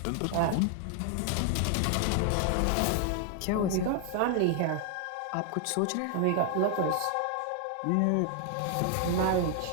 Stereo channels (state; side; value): different; both; correlation 0.00